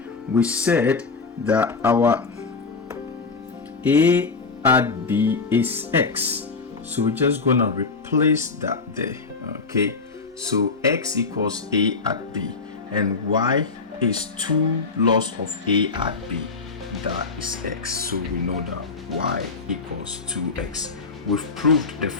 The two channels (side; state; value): right; quieter; 4.4 dB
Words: we said that our a at b is x, so we're just gonna replace that there. Okay, so x equals a at b and y is 2 loss of a at b, that is x, so we know that y equals 2x. We've proved the